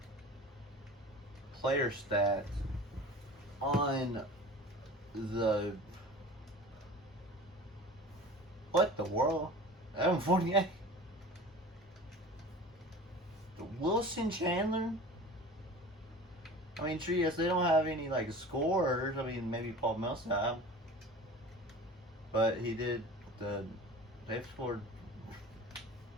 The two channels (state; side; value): normal; both; correlation 0.39